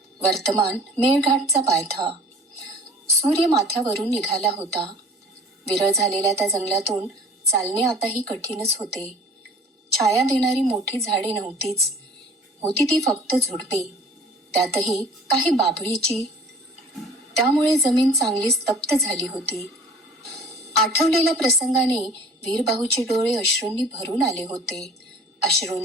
वर्तमान मेळघाटचा पायथा. सूर्य माथ्यावरून निघाला होता. विरळ झालेल्या त्या जंगलातून चालणे आताही कठीणच होते. छाया देणारी मोठी झाडे नव्हतीच, होती ती फक्त झुडपे, त्यातही काही बाभळीची. त्यामुळे जमीन चांगलीच तप्त झाली होती. आठवलेल्या प्रसंगाने वीरबाहूचे डोळे अश्रूंनी भरून आले होते.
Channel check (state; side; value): normal; both; correlation 0.47